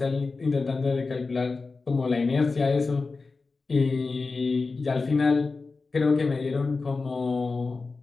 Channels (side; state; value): right; quieter; 4.0 dB